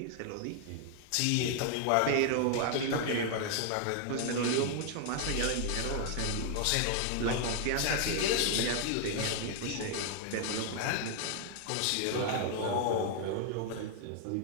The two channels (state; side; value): different; both; correlation 0.00